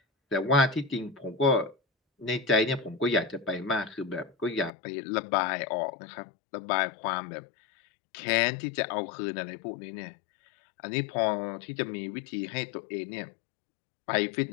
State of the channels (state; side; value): drops out; right; at 4.7 s